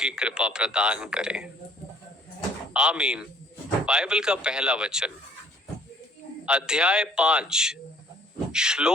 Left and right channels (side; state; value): both; normal; correlation 0.59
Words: कृपा प्रदान करें। आमीन। बाइबल का पहला वचन, अध्याय 5,